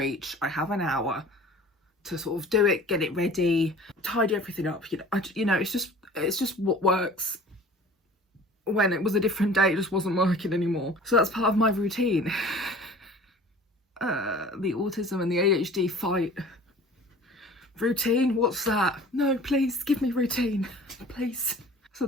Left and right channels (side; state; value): both; normal; correlation 0.45